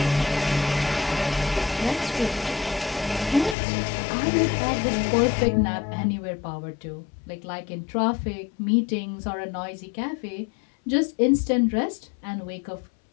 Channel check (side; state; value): right; drops out; at 3.6 s